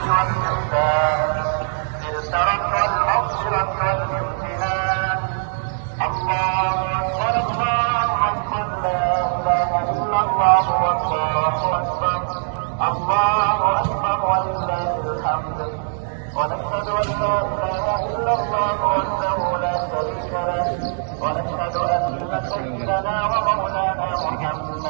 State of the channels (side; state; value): left; silent; digital silence